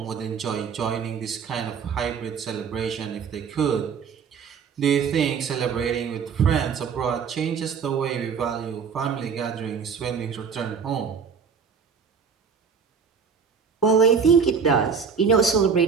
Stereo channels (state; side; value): quieter; left; 6.1 dB